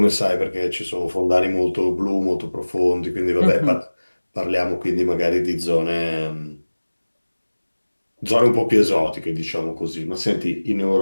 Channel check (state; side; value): inverted; both; correlation -1.00